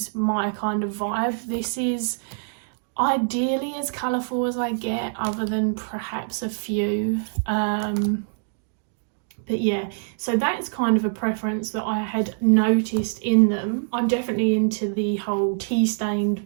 my kind of vibe. This is ideally as colourful as I get, other than perhaps a few. But yeah, so that's kind of a preference that I had noticed in them. I'm definitely into the whole tea-stained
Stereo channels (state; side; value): silent; left; digital silence